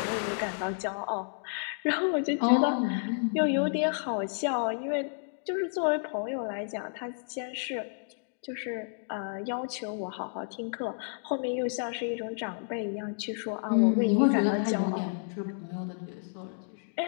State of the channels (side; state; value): right; silent; digital silence